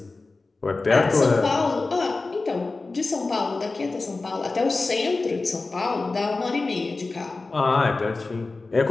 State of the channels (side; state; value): right; quieter; 3.6 dB